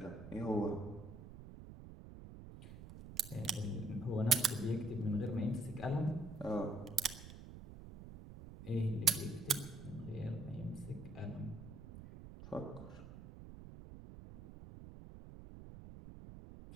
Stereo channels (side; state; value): right; noise; rumble, 13 dB below the sound